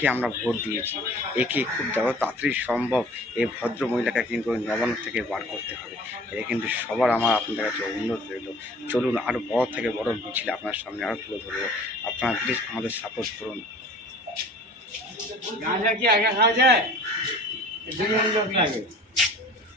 আমরা ভোট দিয়েছি। একে খুব যত তাড়াতাড়ি সম্ভব এই ভদ্র মহিলাকে কিন্তু ওই নবান্ন থেকে বার করতে হবে। এ কিন্তু সবার আমার আপনাদের কাছে অনুরোধ রইল। চলুন আরও বড় থেকে বড় মিছিল আপনার সামনে আরও তুলে ধরবো। আপনারা প্লিজ আমাদের সাপোর্ট করুন। গাঁজা কি একা খাওয়া যায়? দুজন লোক লাগে।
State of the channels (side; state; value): both; normal; correlation 0.47